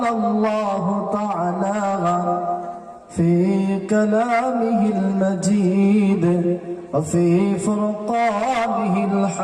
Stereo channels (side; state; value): both; identical; correlation 1.00